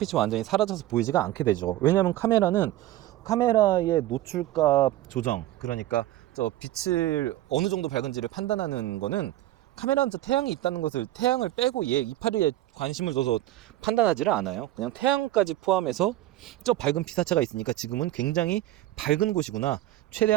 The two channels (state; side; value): quieter; left; 14.9 dB